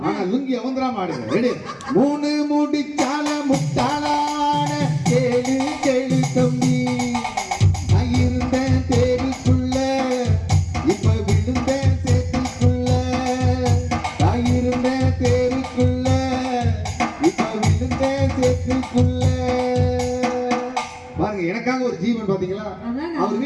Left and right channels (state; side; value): identical; both; correlation 1.00